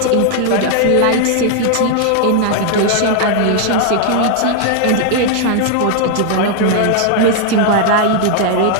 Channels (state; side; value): different; both; correlation 0.00